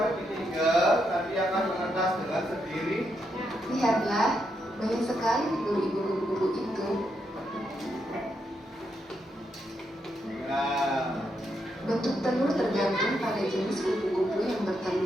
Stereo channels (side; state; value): both; normal; correlation 0.81